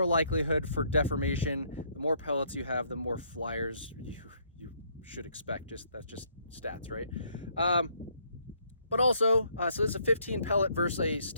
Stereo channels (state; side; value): inverted; both; correlation -0.69